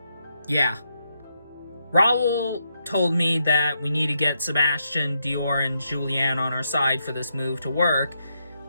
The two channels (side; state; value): both; inverted; correlation -0.80